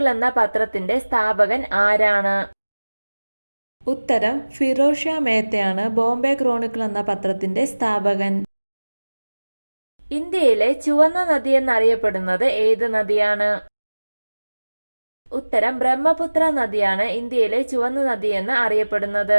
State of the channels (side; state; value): both; inverted; correlation -1.00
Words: എന്ന പത്രത്തിന്റെ സ്ഥാപകൻ ആരാണ്? ഉത്തരം ഫിറോസ് ഷാ മേത്തയാണ് ബോംബെ ക്രോണിക്കിൾ എന്ന പത്രത്തിന്റെ സ്ഥാപകൻ. ഇന്ത്യയിലെ ചുവന്ന നദി എന്നറിയപ്പെടുന്നത് ഏത് നദിയാണ്? ഉത്തരം ബ്രഹ്മപുത്ര നദിയാണ് ഇന്ത്യയിലെ ചുവന്ന നദി എന്ന്